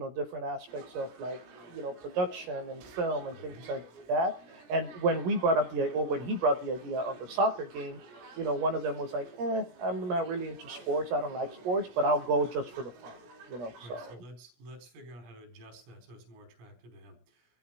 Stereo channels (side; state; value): left; late; 17 ms